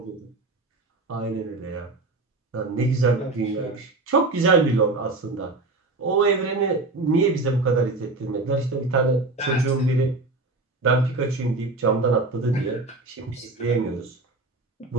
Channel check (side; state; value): left; quieter; 3.3 dB